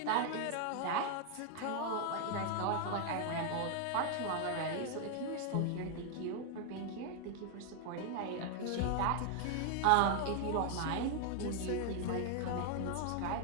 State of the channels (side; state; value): both; different; correlation 0.00